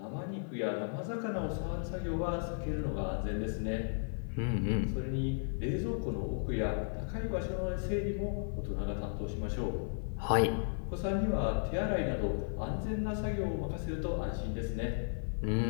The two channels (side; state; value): right; silent; 54 dB below the other